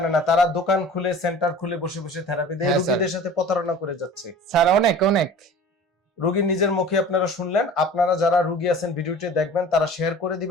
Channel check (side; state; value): both; normal; correlation 0.42